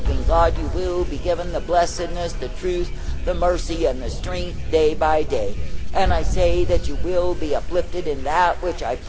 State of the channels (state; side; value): identical; both; correlation 1.00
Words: God, you will be given the blessedness, the truth, the mercy, and the strength day by day. And I say that you will be uplifted in that which I